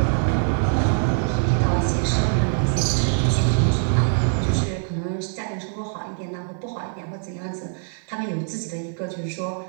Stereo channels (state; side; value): silent; left; 56 dB below the other